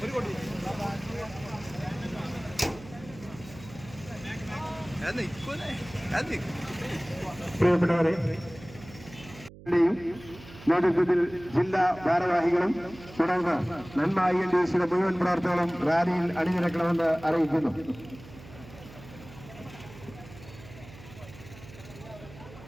ഒരു കൊടി പ്രിയപ്പെട്ടവരെ, നേതൃത്വത്തിൽ ജില്ലാ ഭാരവാഹികളും തുടർന്ന് നന്മ INDC മുഴുവൻ പ്രവർത്തകരും റാലിയിൽ അണിനിരക്കണമെന്ന് അറിയിക്കുന്നു.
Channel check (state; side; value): noise; right; hum, 18 dB below the sound